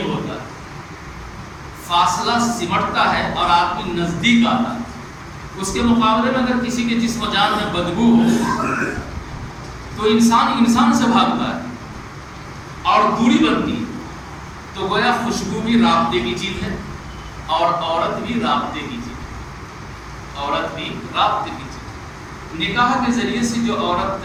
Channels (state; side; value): identical; both; correlation 1.00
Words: ہوتا ہے، فاصلہ سمٹتا ہے اور آدمی نزدیک آتا ہے. اس کے مقابلے میں اگر کسی کے جسم و جان میں بدبو ہو تو انسان سے بھاگتا ہے اور دوری بنتی ہے. تو گویا خوشبو بھی رابطے کی چیز ہے، اور عورت بھی رابطے کی چیز ہے. عورت بھی رابطے کی چیز ہے. نکاح کے ذریعے سے جو